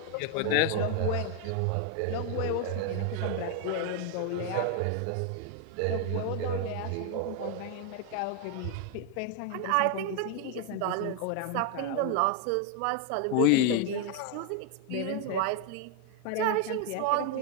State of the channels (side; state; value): both; different; correlation 0.01